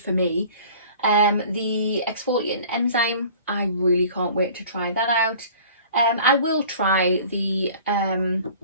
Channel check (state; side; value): inverted; both; correlation -0.46